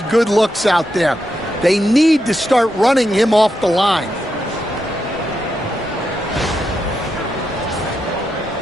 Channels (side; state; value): both; normal; correlation 0.84